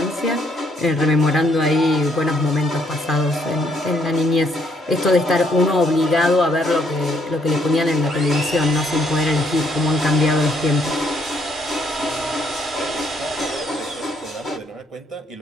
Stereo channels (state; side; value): normal; both; correlation 0.70